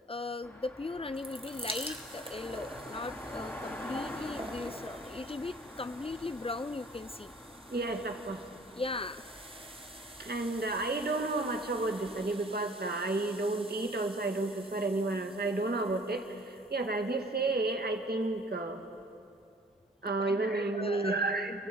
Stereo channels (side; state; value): both; normal; correlation 0.53